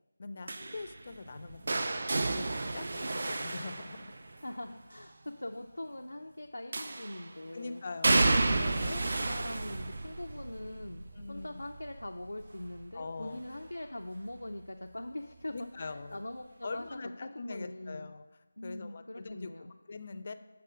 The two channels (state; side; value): inverted; both; correlation -0.95